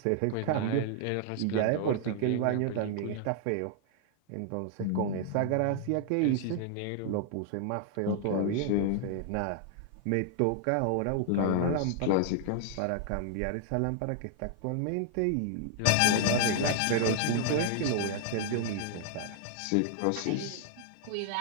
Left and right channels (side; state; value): both; different; correlation 0.00